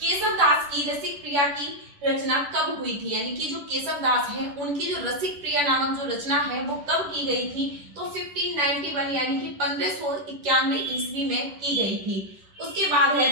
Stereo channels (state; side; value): late; left; 10 ms